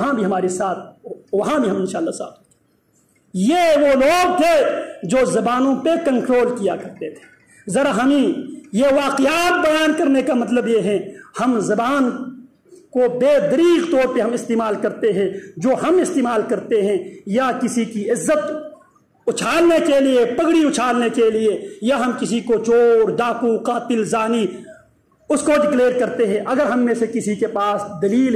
بھی ہمارے ساتھ، وہاں بھی ہم انشاءاللہ ساتھ۔ یہ وہ لوگ تھے جو زبانوں پہ کنٹرول کیا کرتے تھے۔ ذرا ہمیں یہ واقعات بیان کرنے کا مطلب یہ ہے، ہم زبان کو بے دریغ طور پہ ہم استعمال کرتے ہیں، جو ہم استعمال کرتے ہیں یا کسی کی عزت اچھالنے کے لیے، پگڑی اچھالنے کے لیے، یا ہم کسی کو چور، ڈاکو، قاتل، زانی اس کو ڈکلیئر کرتے ہیں۔ اگر ہم میں سے کسی کے پاس دلیل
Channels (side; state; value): both; identical; correlation 1.00